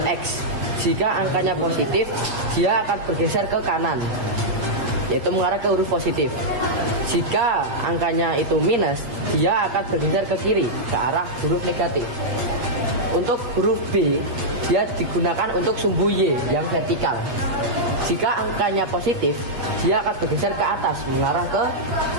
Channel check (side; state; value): left; late; 8.2 ms